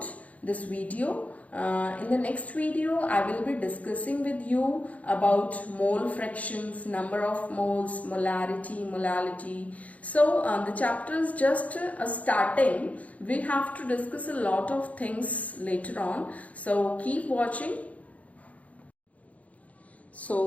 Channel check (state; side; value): late; right; 0.068 ms